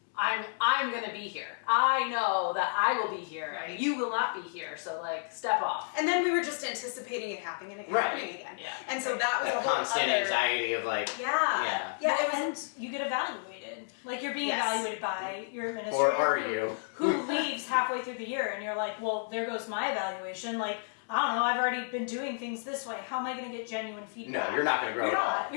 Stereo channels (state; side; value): silent; right; digital silence